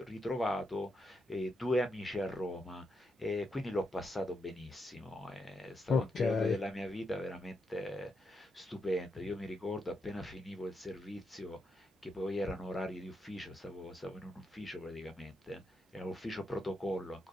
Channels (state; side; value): normal; both; correlation 0.82